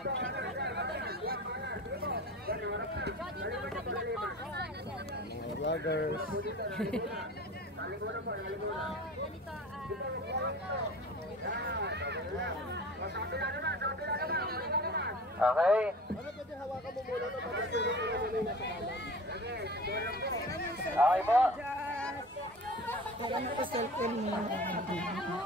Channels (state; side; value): normal; both; correlation 0.38